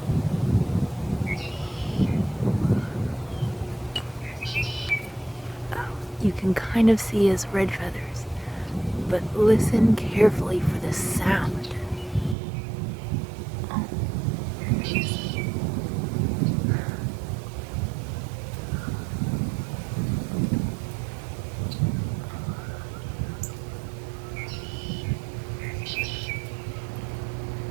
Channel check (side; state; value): left; drops out; at 12.4 s